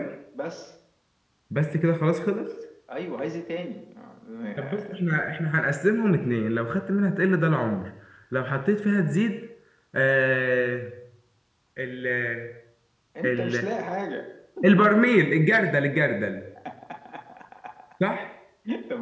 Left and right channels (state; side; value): identical; both; correlation 1.00